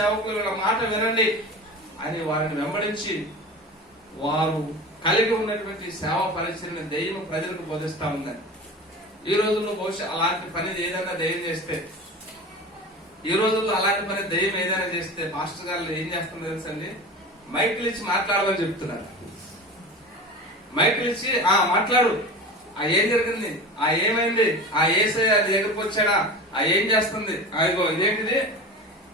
వీళ్ళ మాట వినండి అని వారిని వెంబడించి వారు కలిగి ఉన్నటువంటి సేవ పరిచయం దెయ్యం ప్రజలకు బోధిస్తా ఉందని. ఈ రోజుల్లో బహుశా అలాంటి పని ఏదైనా దెయ్యం చేస్తే, ఈ రోజుల్లో అలాంటి పని దెయ్యం ఏదైనా చేస్తే పాస్టర్ గారు ఏం చేస్తుందో తెలుసండి, మైకులు ఇచ్చి మాట్లాడమని చెప్తున్నారు. మైకులు ఇచ్చి మాట్లాడు, ఏం జరిగింది, ఏమైంది, ఏసై అది దగ్గరకు వచ్చాడా, ఏం చేస్తుంది, ఇగో ఇదేంటిది,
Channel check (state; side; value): normal; both; correlation 0.32